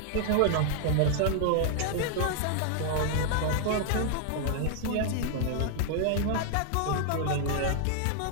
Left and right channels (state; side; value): different; both; correlation 0.00